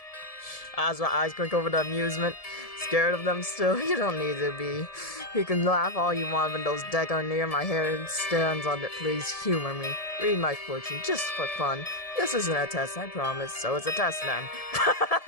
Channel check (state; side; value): late; right; 1.7 ms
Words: Azra eyes quick over the amusement. Scared of them still? You don't need to be. You can laugh all you want when those decks are near my hair stands on it. Please humor me. Read my fortune, just for fun. This isn't a test, I promise. So it's a test then.